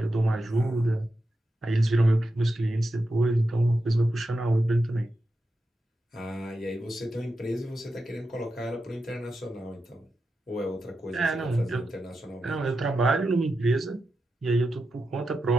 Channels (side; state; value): both; normal; correlation 0.89